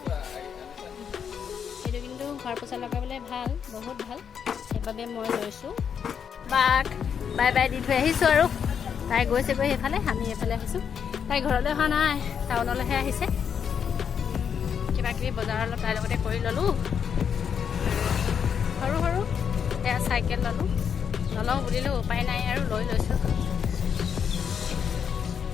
সেইটো কিন্তু ঘৰ পোছা লগাবলৈ ভাল, বহুত ভাল, সেইবাবে মই লৈছোঁ। বাক বাই বাই দি থৈ আহিছোঁ আৰু তাই গৈছেগৈ সেইফালে, আমি এইফালে আহিছোঁ। তাই ঘৰলৈ অহা নাই, টাউনলৈহে আহিছে। কিবা কিবি বজাৰ অলপ তাইৰ লগতে কৰি ল'লোঁ। সৰু সৰু এয়া চাইকেল ল'লোঁ, নলওঁ বুলিলোঁ উপায় নাই আৰু লৈছোঁ।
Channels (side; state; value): right; quieter; 7.4 dB